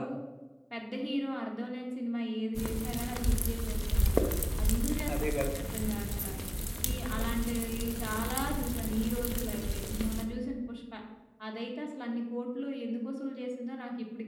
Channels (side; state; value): both; identical; correlation 1.00